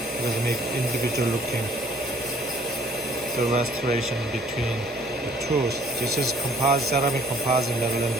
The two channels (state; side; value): normal; both; correlation 0.58